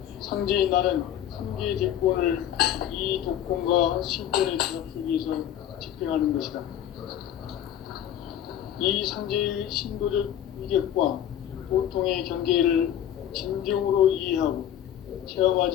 상제인 나는 3계 대권을 이 이 독권과 신권의 규합 속에서 집행하는 것이다. 이 상제의 신도적 위력과 보통의 경계를 진정으로 이해하고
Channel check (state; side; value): quieter; right; 10.7 dB